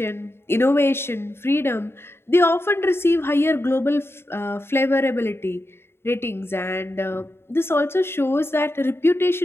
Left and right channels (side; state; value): right; late; 0.12 ms